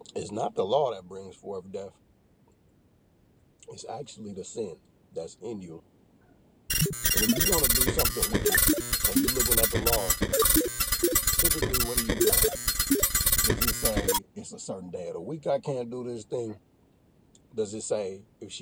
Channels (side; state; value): both; identical; correlation 1.00